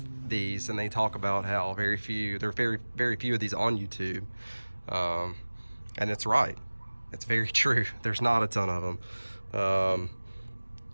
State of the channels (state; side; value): inverted; both; correlation -1.00